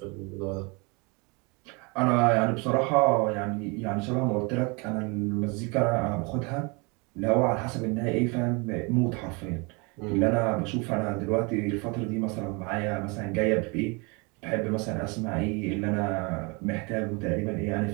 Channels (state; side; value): quieter; left; 29.8 dB